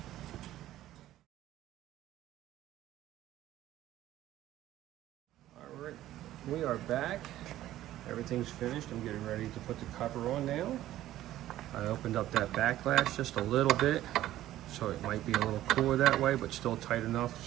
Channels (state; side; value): quieter; left; 13.9 dB